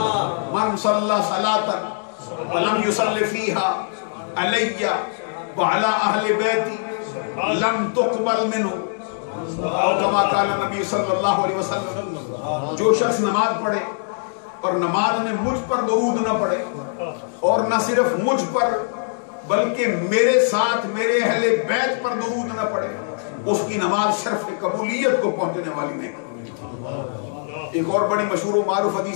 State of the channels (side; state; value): right; silent; digital silence